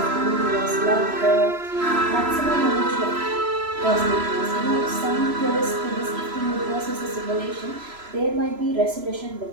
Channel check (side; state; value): left; late; 3.0 ms